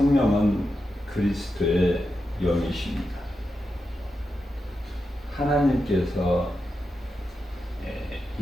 그리스도의 영이십니다. 하나님께서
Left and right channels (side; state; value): both; normal; correlation 0.88